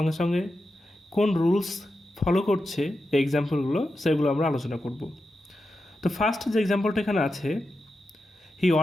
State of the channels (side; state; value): both; normal; correlation 0.89